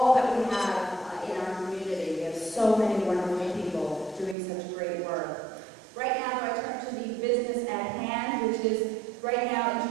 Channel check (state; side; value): drops out; left; at 4.4 s